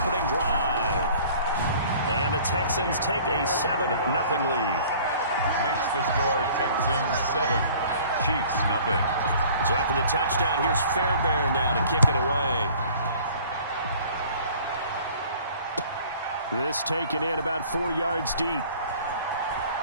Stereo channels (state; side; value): inverted; both; correlation -0.50